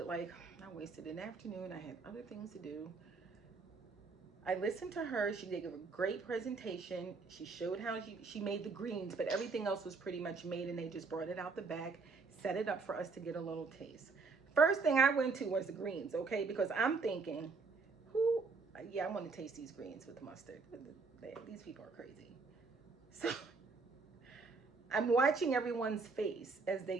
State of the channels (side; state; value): left; quieter; 4.4 dB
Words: like I wasted an afternoon. I had other things to do. I listened to her. She did a great presentation. She showed how she made the greens, but everything else was pretty much made, and they just brought it out the bag, set it up for us to get a little taste. First thing I went to was the greens, okay? Because I'm thinking, I want to taste these greens with mustard. These people are crazy. So I'm watching everyone's face as